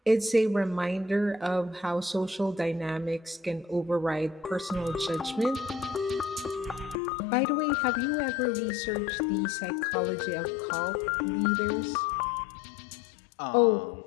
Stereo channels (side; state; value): right; drops out; at 7.0 s